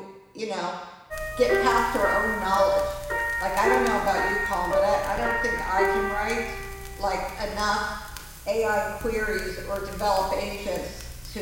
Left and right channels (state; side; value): identical; both; correlation 1.00